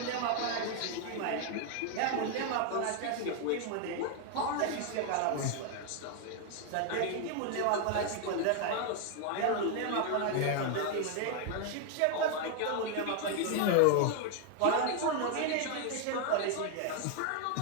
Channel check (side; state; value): both; different; correlation 0.01